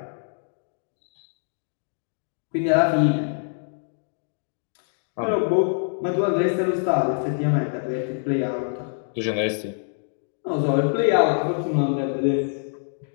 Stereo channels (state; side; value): silent; right; digital silence